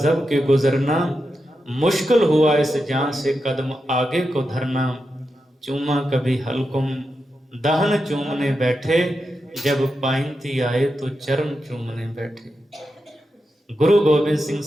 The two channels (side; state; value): both; normal; correlation 0.88